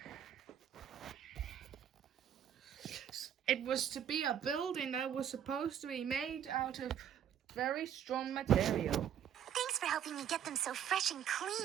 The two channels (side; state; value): left; quieter; 9.4 dB